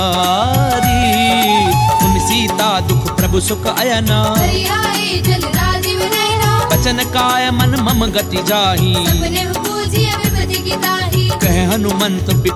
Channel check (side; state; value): both; identical; correlation 1.00